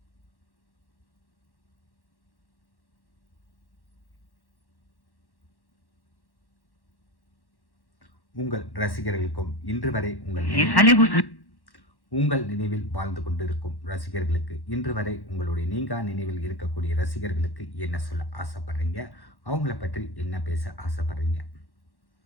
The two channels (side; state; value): right; late; 1.1 ms